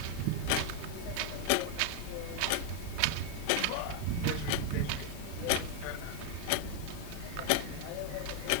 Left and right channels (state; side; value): different; both; correlation 0.00